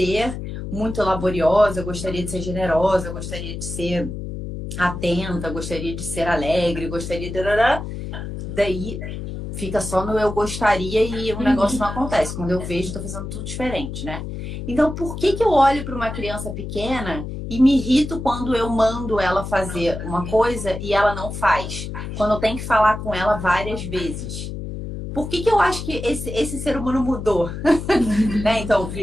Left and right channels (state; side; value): noise; left; hum, 7 dB below the sound